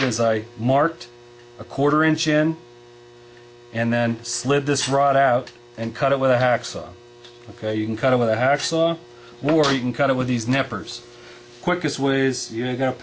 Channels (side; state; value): both; identical; correlation 1.00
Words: is I marked 1/4 inch in and then slid this rod out and cut it with a hacksaw. Okay, you can cut it with a hacksaw, or you can cut it with these nippers. Quickest way is, you got a